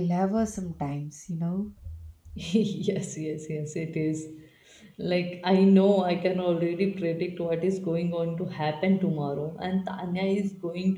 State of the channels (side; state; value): both; identical; correlation 1.00